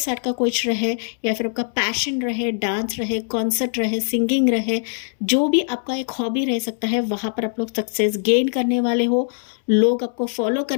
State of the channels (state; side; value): silent; right; 64 dB below the other